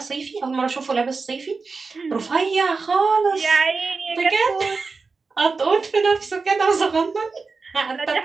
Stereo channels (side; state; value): left; quieter; 4.4 dB